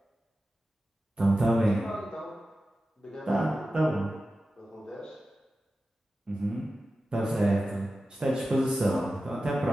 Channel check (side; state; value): both; normal; correlation 0.94